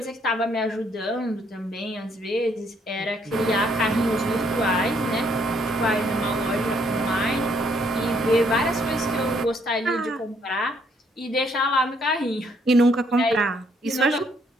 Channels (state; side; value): normal; both; correlation 0.69